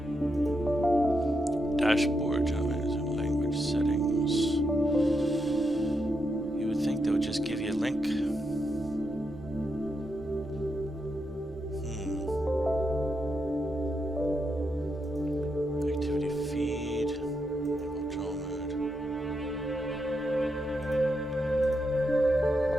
Dashboard, language settings. You would think they would just give you a link. Activity feed. Enable draw mode.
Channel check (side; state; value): both; normal; correlation 0.83